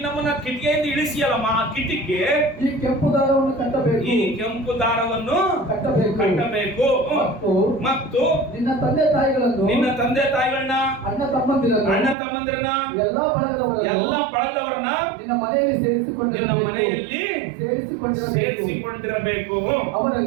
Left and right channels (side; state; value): left; drops out; at 12.2 s